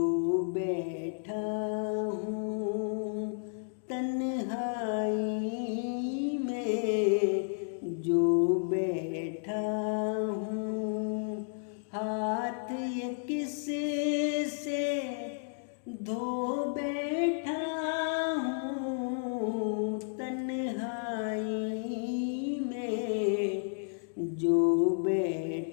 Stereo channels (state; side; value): silent; right; digital silence